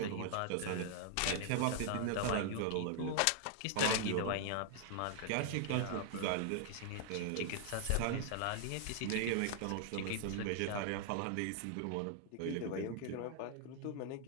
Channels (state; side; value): different; both; correlation 0.00